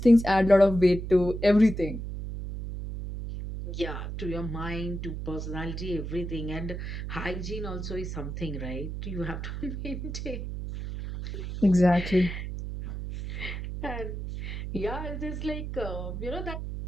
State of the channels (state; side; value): noise; right; hum, 6 dB below the sound